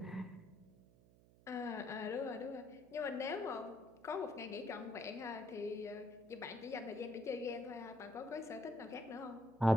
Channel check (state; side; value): noise; right; hum, 24 dB below the sound